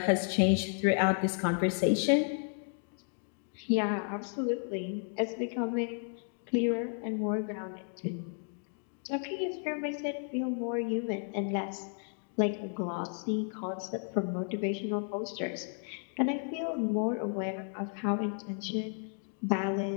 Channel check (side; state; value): right; silent; 56 dB below the other